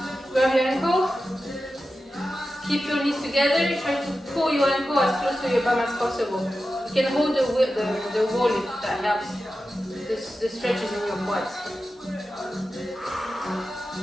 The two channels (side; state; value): both; normal; correlation 0.92